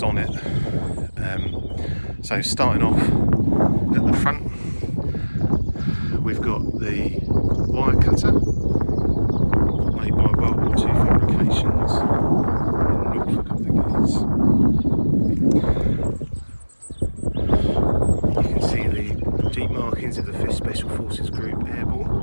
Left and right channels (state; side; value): inverted; both; correlation -1.00